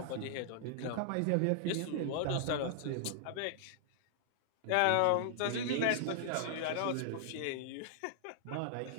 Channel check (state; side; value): different; both; correlation -0.01